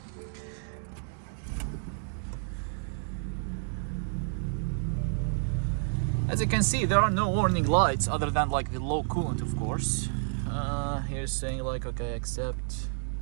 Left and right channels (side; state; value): left; silent; digital silence